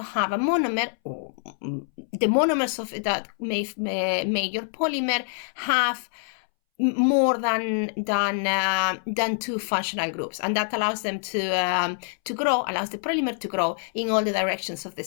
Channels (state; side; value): silent; right; 61 dB below the other